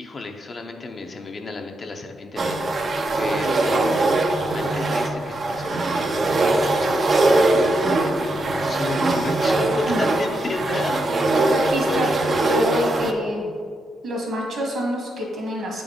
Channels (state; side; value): normal; both; correlation 0.83